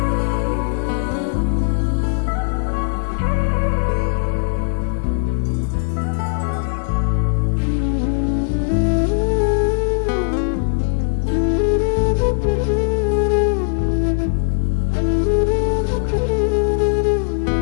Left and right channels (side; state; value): right; silent; digital silence